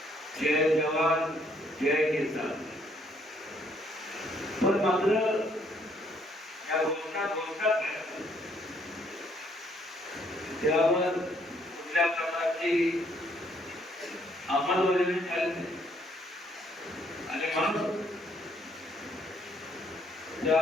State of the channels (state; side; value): normal; both; correlation 0.68